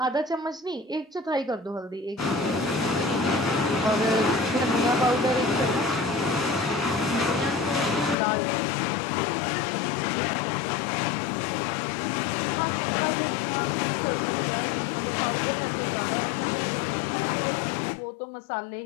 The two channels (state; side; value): drops out; right; at 8.2 s